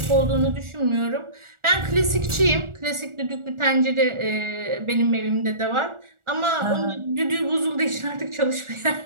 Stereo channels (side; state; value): left; late; 1.4 ms